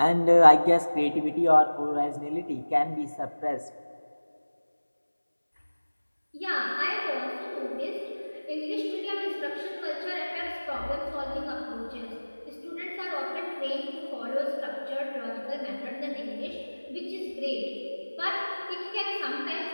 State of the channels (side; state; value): both; inverted; correlation -1.00